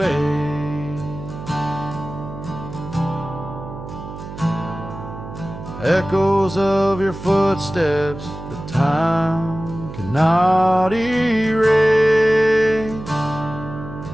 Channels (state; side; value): noise; right; hum, 11 dB below the sound